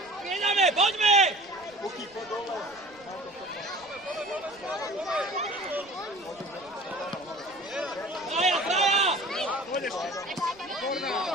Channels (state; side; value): noise; right; rumble, 28 dB below the sound